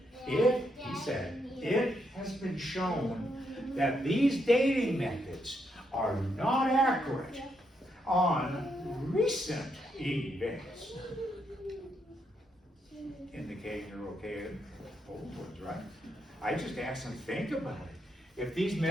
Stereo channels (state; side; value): normal; both; correlation 0.79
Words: He said, it has been shown that these dating methods are not accurate on recent events. Indicating you're okay with old ones, right? I just asked them, think about it. If these